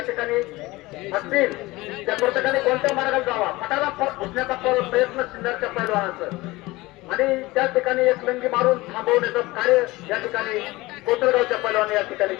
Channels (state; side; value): quieter; right; 20.5 dB